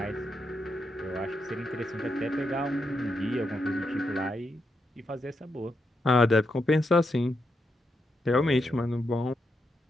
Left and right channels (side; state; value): both; normal; correlation 0.83